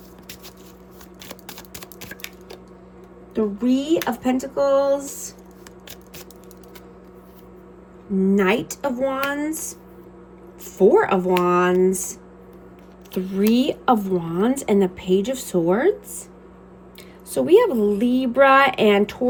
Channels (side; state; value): both; identical; correlation 1.00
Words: Three of Pentacles. Knight of Wands. Four of Wands. Three of Wands and the Page of Swords. So we have Libra and